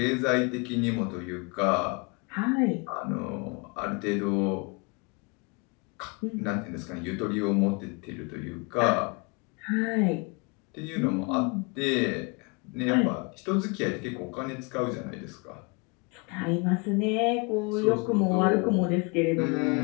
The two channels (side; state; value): right; quieter; 31.2 dB